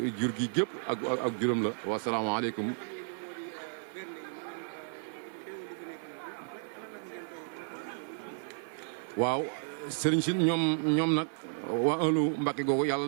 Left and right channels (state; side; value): silent; left; 56 dB below the other